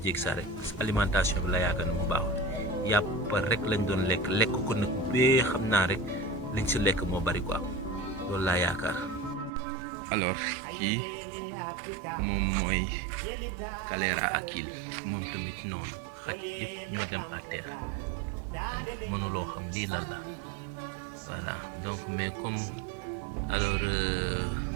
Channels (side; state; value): left; drops out; at 9.5 s